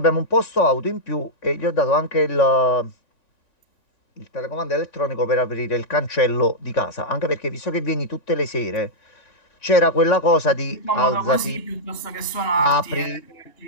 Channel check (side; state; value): right; late; 3.5 ms